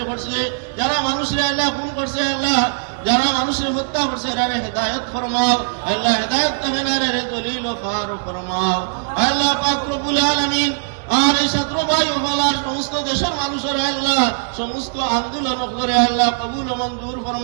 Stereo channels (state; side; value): silent; left; 60 dB below the other